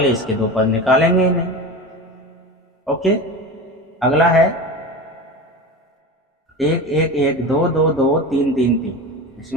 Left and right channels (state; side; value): normal; both; correlation 0.28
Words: इसके 2 पद निकालेंगे ही नहीं। ओके, अगला है 1 1 1 2 2 2 3 3 3।